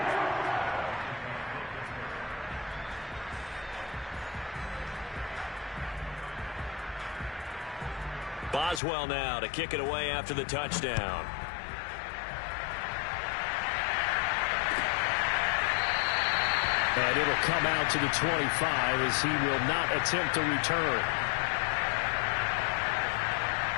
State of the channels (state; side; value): drops out; right; at 8.8 s